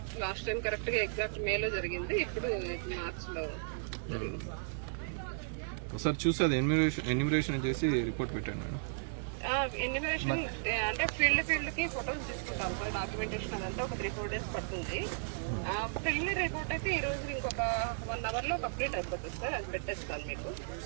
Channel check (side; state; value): left; silent; digital silence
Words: లాస్ట్ టైం కరెక్ట్ గా ఎగ్జాక్ట్ మేలో జరిగింది. ఇప్పుడు మార్చ్ లో ఒకసారి చూసి అది ఎన్యూమరేషన్ చేసి రిపోర్ట్ పెట్టండి మేడం. ఎన్యూమరేషన్ అంటే ఫీల్డ్ కి ఫొటోస్ తీసుకుంటాం సార్. డాక్యుమెంటేషన్ అదంతా ఒక 3-4 డేస్ పడుతుంది. క్లియర్ రిపోర్ట్ అయితే ఈ రోజు ఇంకొక 1 hour లో కంప్లీట్ అయిపోతుంది సార్. అది పెట్టేస్తాను మీకు.